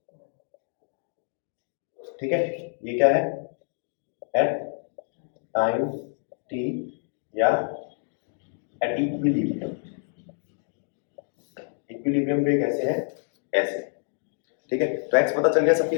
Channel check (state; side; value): silent; right; 60 dB below the other